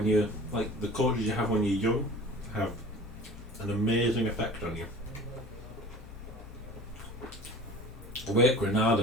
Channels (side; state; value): left; noise; hum, 17 dB below the sound